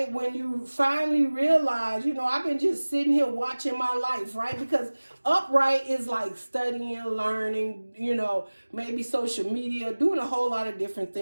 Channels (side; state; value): both; inverted; correlation -1.00